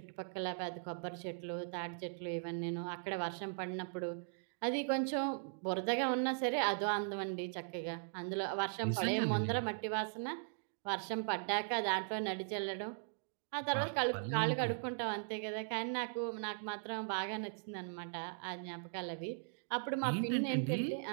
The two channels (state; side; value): silent; left; digital silence